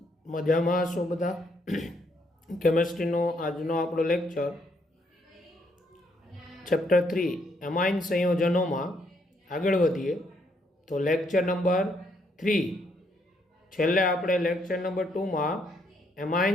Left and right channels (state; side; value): normal; both; correlation 0.72